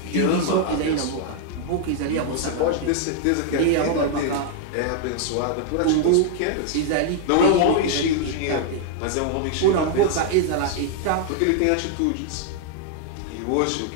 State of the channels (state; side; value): different; both; correlation 0.00